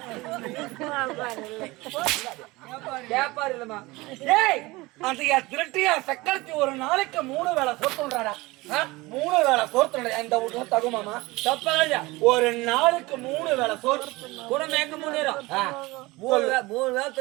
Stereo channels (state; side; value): quieter; left; 21.7 dB